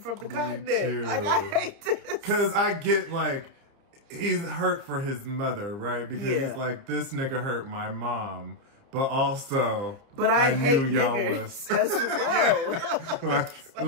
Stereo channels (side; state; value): left; late; 30 ms